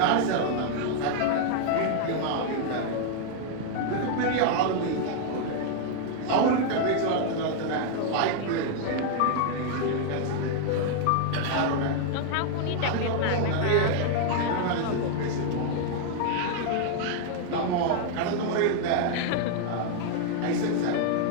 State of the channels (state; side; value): different; both; correlation 0.00